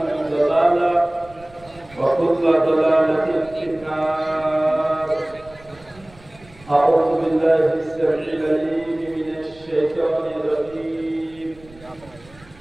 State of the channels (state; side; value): noise; right; rumble, 24 dB below the sound